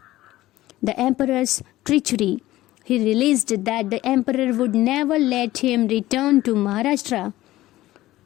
the emperor's treachery. He realized that the emperor would never let him return to Maharashtra.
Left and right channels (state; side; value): quieter; right; 16.2 dB